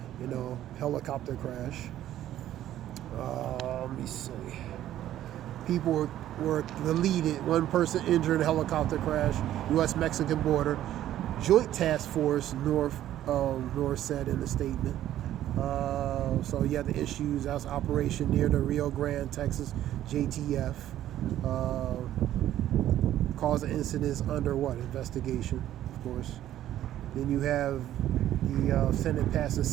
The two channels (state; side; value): quieter; left; 12.5 dB